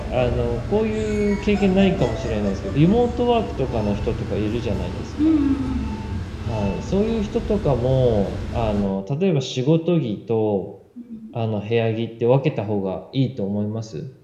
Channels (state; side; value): identical; both; correlation 1.00